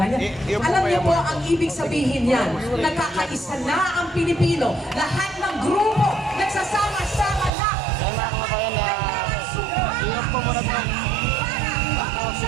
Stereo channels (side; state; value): left; drops out; at 7.5 s